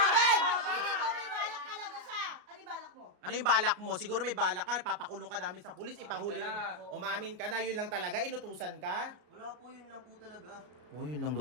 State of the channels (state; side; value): late; left; 33 ms